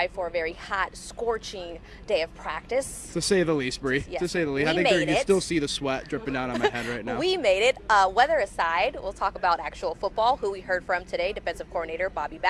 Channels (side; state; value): both; identical; correlation 1.00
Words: for a very hot, scorching day of practice. To say the least, Bree. Yes, to say the least. we I think made you it. still see the sweat dripping down on my head right now. We made it. Weather aside, we'll talk about actual football, who we heard from today, defensive coordinator Bobby